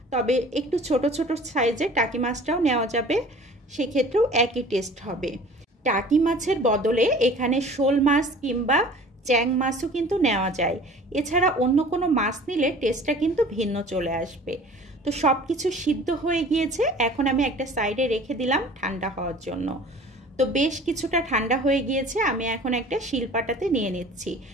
তবে একটু ছোট ছোট সাইজের টাকি মাছটাও নেওয়া যাবে, সেক্ষেত্রেও একই টেস্ট হবে। টাকি মাছের বদলে এখানে শোল মাছ কিংবা চ্যাং মাছও কিন্তু নেওয়া যায়। এছাড়া অন্য কোনো মাছ নিলে টেস্টটা কিন্তু ভিন্ন চলে আসবে। তো সব কিছু সিদ্ধ হয়ে গিয়েছে, এখন আমি একটা সাইডে রেখে দিলাম ঠান্ডা হওয়ার জন্য। তো বেশ কিছুটা ঠান্ডা হয়ে গিয়েছে, আমি এখন একটা শিলপাটাতে নিয়ে নিচ্ছি।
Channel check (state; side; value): normal; both; correlation 0.46